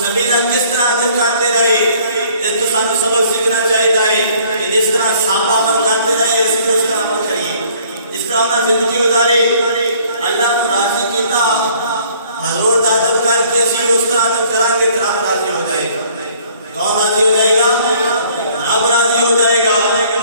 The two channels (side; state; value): both; inverted; correlation -0.57